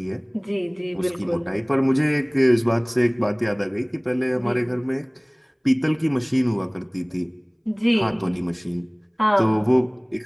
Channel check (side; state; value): both; identical; correlation 1.00